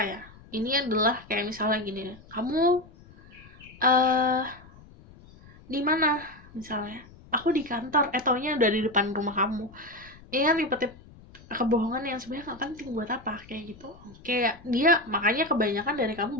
ya. Ini adalah kayak misalnya gini, kamu di mana misalnya, aku di kantor, taunya udah di depan rumah kamu. Ini kan tipe-tipe kebohongan yang sebenarnya nggak penting, buat apa kayak gitu. Kayak dia, makanya kebanyakan dari kamu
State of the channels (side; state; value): left; noise; rumble, 22 dB below the sound